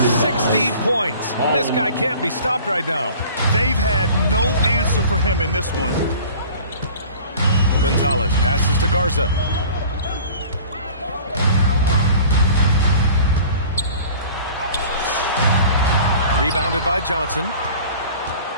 points. This guy can't be stopped right now. They've had no answer for him in this one. Gonzalez passes to Garza. Rebounded by Johnson.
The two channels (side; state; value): both; inverted; correlation -0.45